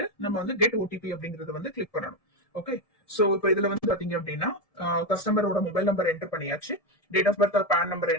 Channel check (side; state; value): right; late; 1.7 ms